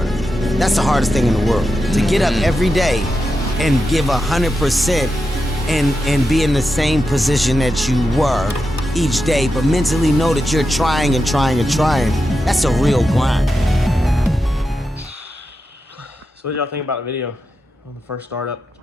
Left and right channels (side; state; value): both; normal; correlation 0.89